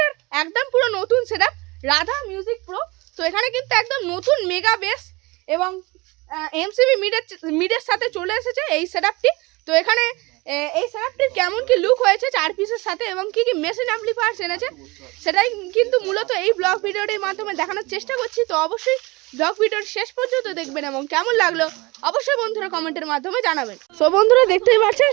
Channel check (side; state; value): left; quieter; 24.1 dB